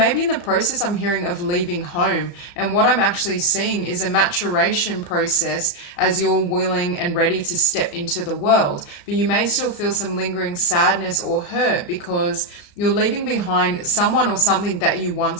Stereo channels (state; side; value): late; right; 34 ms